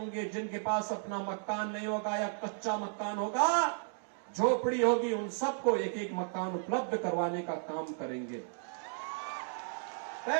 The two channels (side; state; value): left; silent; 55 dB below the other